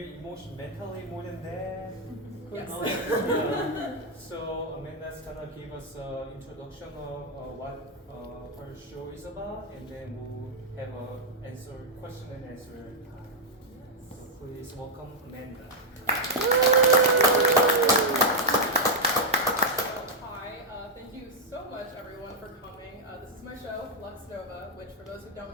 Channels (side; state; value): both; normal; correlation -0.03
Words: mentally more than that. Yes. So Amanda's gonna give us an introduction of what her show is about, and then we'll have a question and answer time. So please welcome Amanda. Hi, thank you so much everyone for coming. This is my show, Lux Nova, which for those who